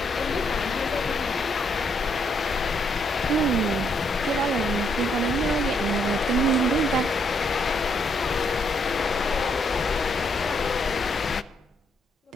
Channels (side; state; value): both; normal; correlation 0.73